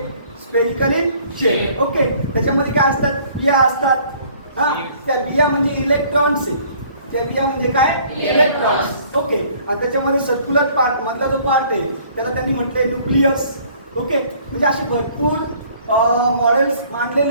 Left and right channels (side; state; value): both; inverted; correlation -0.57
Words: Spherical in shape. Okay, त्याच्यामध्ये काय असतात बिया असतात. हां, त्या बिया म्हणजे इलेक्ट्रॉन्स आहे. त्या बिया म्हणजे काय इलेक्ट्रॉन्स. ओके, आणि त्याच्यामध्ये सर्क्युलर पार्ट मधला जो पार्ट आहे त्याला त्यांनी म्हटलंय न्यूक्लियस. ओके, म्हणजे असे भरपूर मॉडेल्स